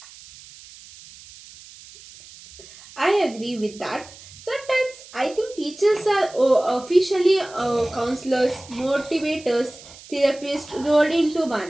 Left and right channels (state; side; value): noise; right; hiss, 20 dB below the sound